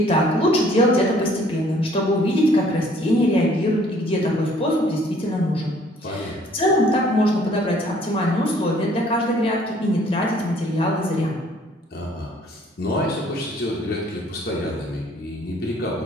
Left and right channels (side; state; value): both; normal; correlation 0.59